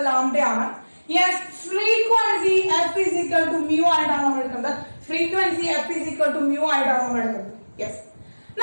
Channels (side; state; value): both; inverted; correlation -1.00